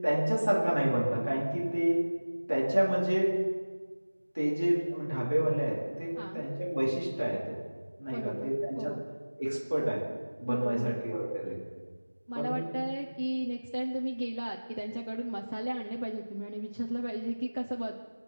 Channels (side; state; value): both; inverted; correlation -1.00